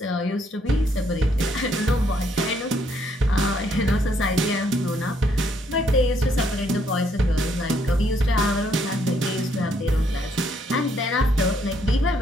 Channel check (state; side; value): normal; both; correlation 0.70